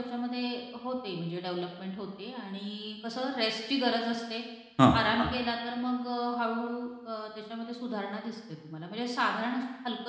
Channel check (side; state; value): both; identical; correlation 1.00